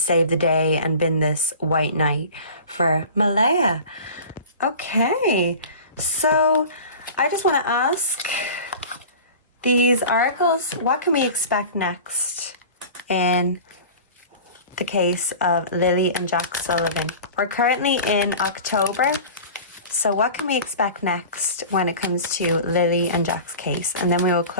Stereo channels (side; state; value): both; inverted; correlation -0.38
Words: the day and been this white knight for Malaya. Okay, so I just want to ask these oracles, what can we expect next in the case of Lilly and Jack Sullivan? We're currently in October, so what can we expect next when it comes to Lilly and Jack's case? And then we will